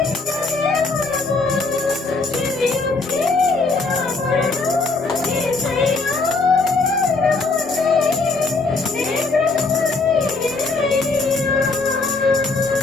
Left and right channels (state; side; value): quieter; right; 3.8 dB